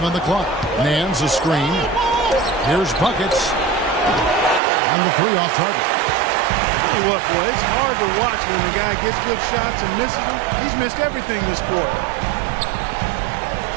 on the clock. Nance a screen. Here's Buckets. And the 3 off target. Tell you what, boy, it's hard to watch when the guy gets good shots and misses them. He's missed everything this quarter.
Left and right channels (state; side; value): drops out; left; at 4.6 s